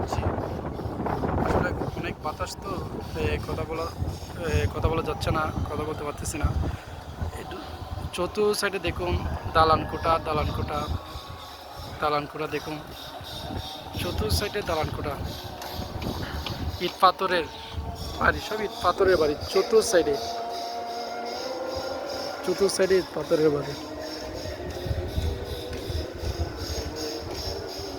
আসলে অনেক বাতাস তো, কথা বলা যাচ্ছে না, কথা বলতে পারতেছি না। চতুর্থ সাইডে দেখুন দালানকোঠা দালানকোঠা দালানকোঠা, দেখুন চতুর্থ সাইডে দালানকোঠা, ইট পাথরের বাড়ি, সব ইট পাথরের বাড়ি। চতুর্থ সাইডে ইট পাথরের বাড়ি।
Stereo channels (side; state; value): both; identical; correlation 1.00